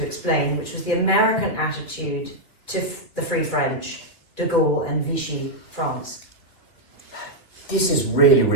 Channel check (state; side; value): late; right; 2.6 ms